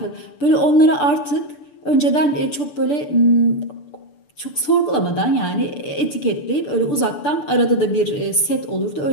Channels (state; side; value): late; right; 6.8 ms